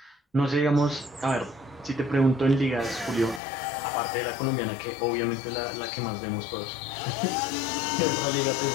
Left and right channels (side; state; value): right; drops out; at 3.4 s